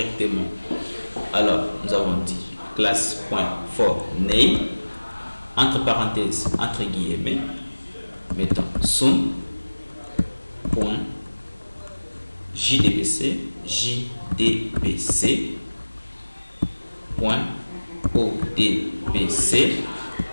Alors, nous avons dit classe.forName, entre parenthèses, entre guillemets, mettons sum, point, JDBC, point, ODBC,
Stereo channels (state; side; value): inverted; both; correlation -1.00